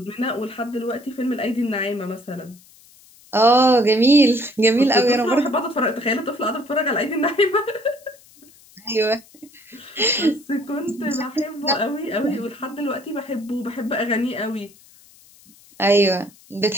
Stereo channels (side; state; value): left; noise; hiss, 26 dB below the sound